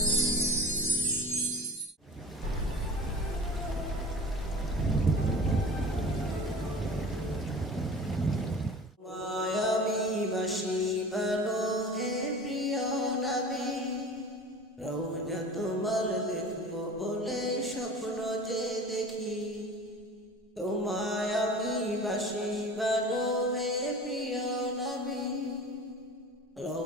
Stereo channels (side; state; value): both; normal; correlation 0.38